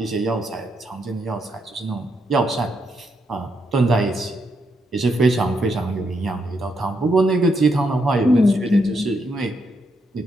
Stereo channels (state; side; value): normal; both; correlation 0.79